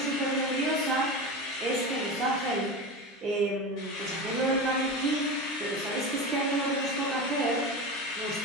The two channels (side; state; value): both; normal; correlation 0.25